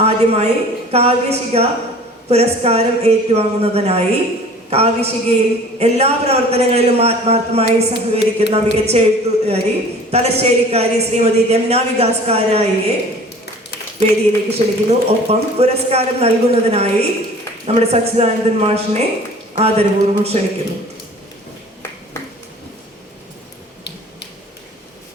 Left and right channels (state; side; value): normal; both; correlation 0.46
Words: ആദ്യമായി കാവ്യശിഖ പുരസ്കാരം ഏറ്റുവാങ്ങുന്നതിനായി കാവ്യശിഖയിൽ എല്ലാ പ്രവർത്തനങ്ങളിലും ആത്മാർത്ഥമായി സഹകരിക്കുന്ന മികച്ച എഴുത്തുകാരി തലശ്ശേരിക്കാരി ശ്രീമതി രമ്ന വികാസ് കാരായിയെ വേദിയിലേക്ക് ക്ഷണിക്കുന്നു. ഒപ്പം പുരസ്കാരം നൽകുന്നതിനായി നമ്മുടെ സച്ചിദാനന്ദൻ മാഷിനെ ആദരപൂർവ്വം ക്ഷണിക്കുന്നു.